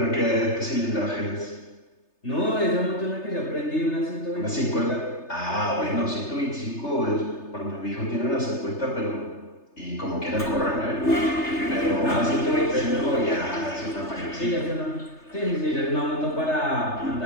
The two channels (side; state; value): right; late; 3.3 ms